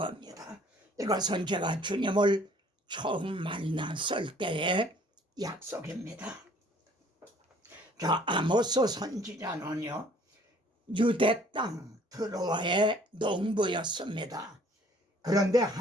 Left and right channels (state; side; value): normal; both; correlation 0.56